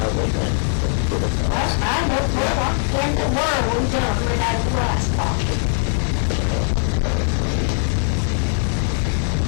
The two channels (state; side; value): silent; right; 62 dB below the other